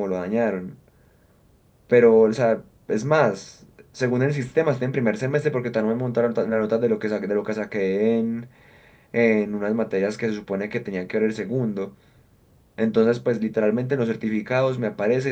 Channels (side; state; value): both; identical; correlation 1.00